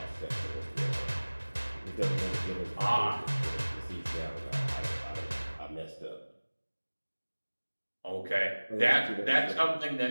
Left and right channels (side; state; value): both; inverted; correlation -1.00